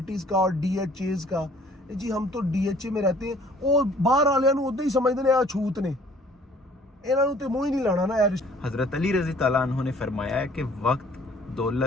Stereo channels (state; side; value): normal; both; correlation 0.55